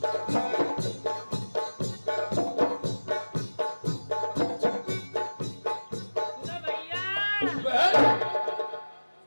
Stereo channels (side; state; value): both; inverted; correlation -1.00